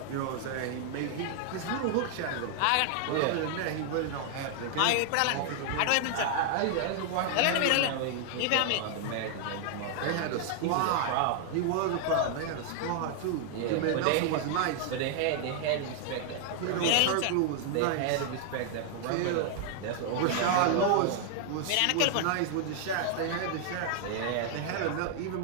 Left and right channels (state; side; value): different; both; correlation 0.00